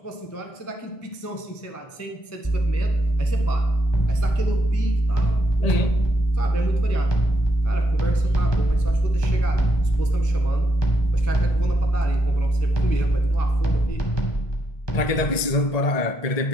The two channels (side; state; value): right; late; 1.8 ms